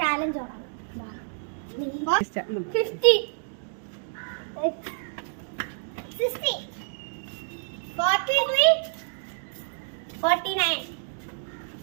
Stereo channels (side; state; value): left; silent; digital silence